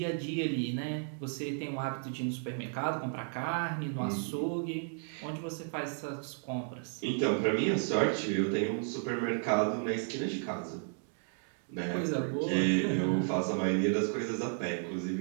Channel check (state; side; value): silent; left; 56 dB below the other